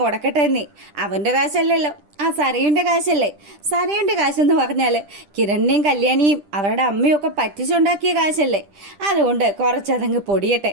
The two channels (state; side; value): late; left; 10 ms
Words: എന്നേ, അവൻ്റെ കാശല്ലല്ലോ, സരയുൻ്റെ കാശല്ലേ. സരയുൻ്റെ കാശെന്ന് പറഞ്ഞാൽ കിരണിനെയും കല്യാണിയും അവരുടെ അമ്മയൊക്കെ പറ്റിച്ചുണ്ടാക്കിയ കാശല്ലേ. അതുകൊണ്ട് കുറച്ചതങ്ങ് പൊടിയട്ടെ.